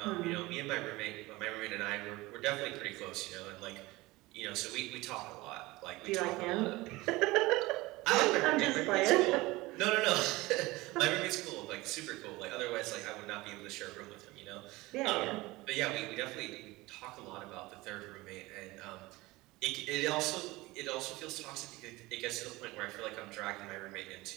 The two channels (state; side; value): quieter; left; 20.6 dB